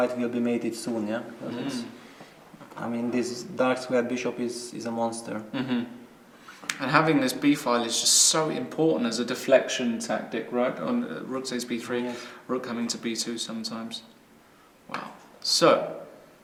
will be mated soon, yeah? Because it's, I mean, this dark squared bishop is a monster. And having this b file is just so important as a deflection tactic, right? On rook takes b3, Yes. rook coming to b2 sometimes. Wow. So,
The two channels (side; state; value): both; identical; correlation 1.00